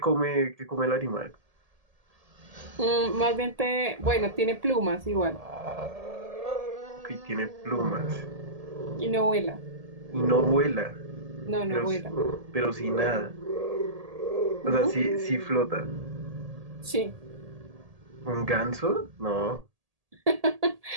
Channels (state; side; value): late; left; 1.8 ms